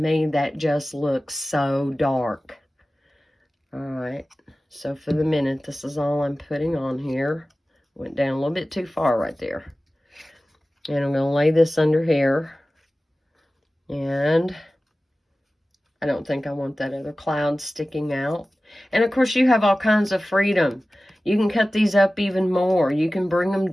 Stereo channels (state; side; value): normal; both; correlation 0.96